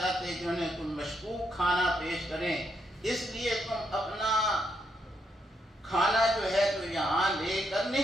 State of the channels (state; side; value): normal; both; correlation 0.78